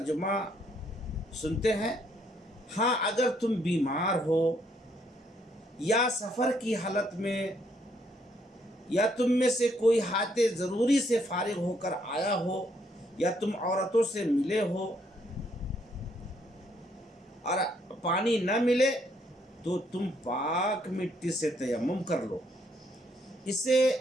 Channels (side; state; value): both; normal; correlation 0.70